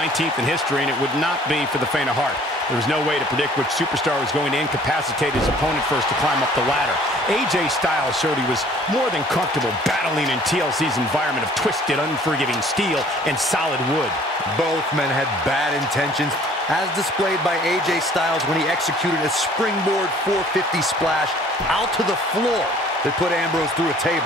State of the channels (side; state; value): both; normal; correlation 0.54